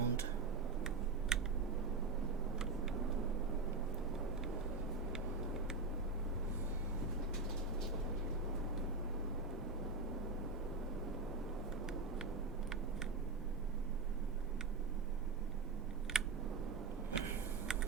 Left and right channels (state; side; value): quieter; left; 3.9 dB